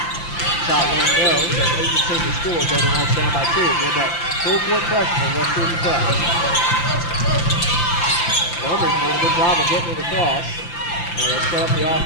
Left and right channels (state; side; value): late; right; 5.8 ms